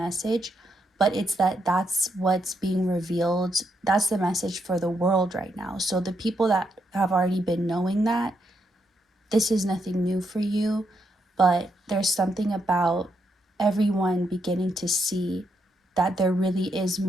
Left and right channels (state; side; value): normal; both; correlation 0.79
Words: but it's that that's what's being revealed. That's the message for the world right now. So the people that have already been knowing that, this is nothing new for you, but there's something about everyone beginning to see that there really is